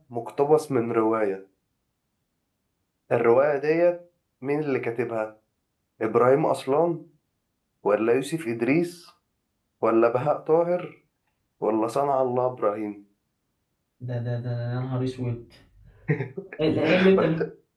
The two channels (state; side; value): identical; both; correlation 1.00